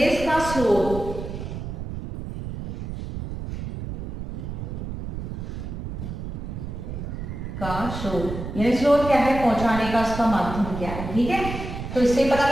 का स्रोत, का स्रोत, यानी स्रोत क्या है? पहुंचाने का उसका माध्यम क्या है। ठीक है। तो इससे पता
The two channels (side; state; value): right; noise; rumble, 7 dB below the sound